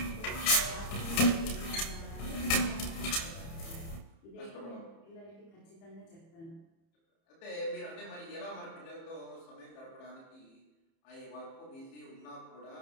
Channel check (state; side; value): late; right; 30 ms